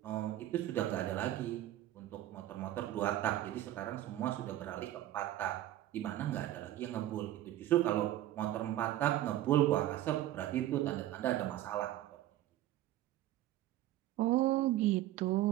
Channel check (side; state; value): left; quieter; 13.9 dB